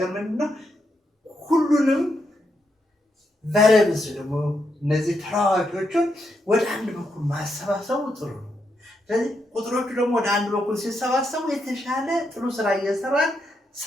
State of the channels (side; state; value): both; normal; correlation 0.81